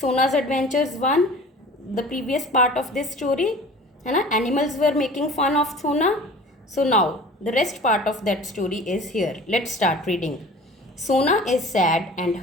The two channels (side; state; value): both; normal; correlation 0.43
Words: Adventures 1, the previous part of this story. Animals were making fun of Sona. So now, the rest part of that story is here. Let's start reading. Sona is sad and